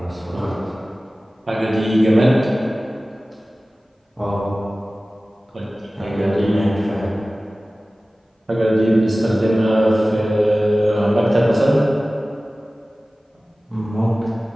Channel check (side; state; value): both; normal; correlation 0.97